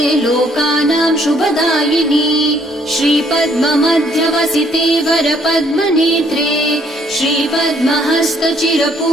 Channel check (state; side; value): normal; both; correlation 0.66